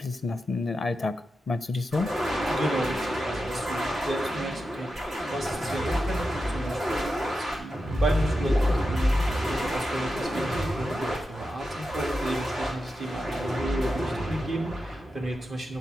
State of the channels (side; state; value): both; normal; correlation 0.89